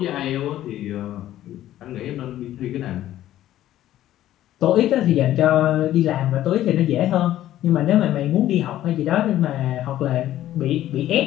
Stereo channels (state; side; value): quieter; right; 13.2 dB